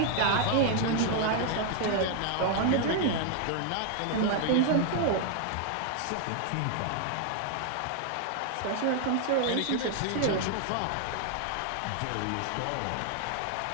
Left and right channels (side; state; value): both; different; correlation 0.00